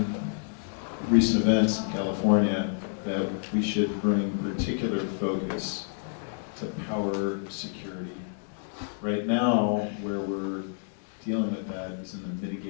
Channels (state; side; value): silent; right; digital silence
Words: recent events in California, that we should bring particular focus to power security. Right now, where we're dealing with that is in the